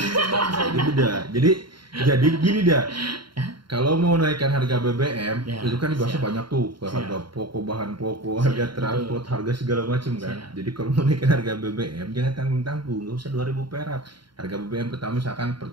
bangsa ini. Jadi gini dah. kalau mau naikkan harga BBM, Ya, itu kan dibahasnya siap. banyak tuh, ke Siap. harga pokok, bahan pokok, Siap, harga transport, harga segala macam kan. Siap. Jadi kalau mau naikkan harga BBM, jangan tanggung-tanggung, nggak usah 2.000 perak. Harga BBM pertama misalkan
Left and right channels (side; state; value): left; late; 0.73 ms